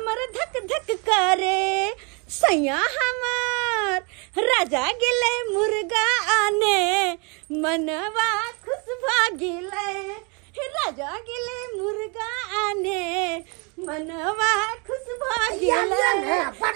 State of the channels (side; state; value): left; quieter; 32.4 dB